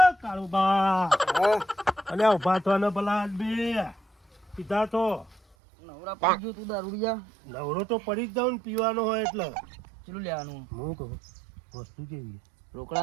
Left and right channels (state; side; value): drops out; left; at 5.4 s